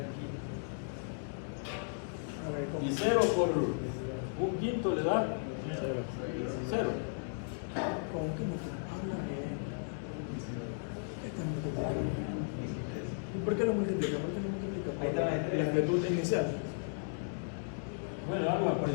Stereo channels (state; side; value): silent; right; digital silence